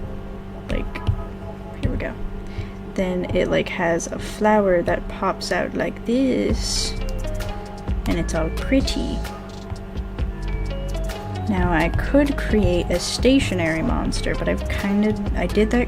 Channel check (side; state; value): both; identical; correlation 1.00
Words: like, here we go. Then it like has a flower that pops out like this, and it's all pretty. Now I could create a stationary monster, but I did